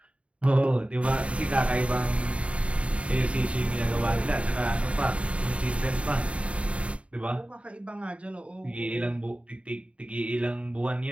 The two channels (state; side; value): late; left; 0.062 ms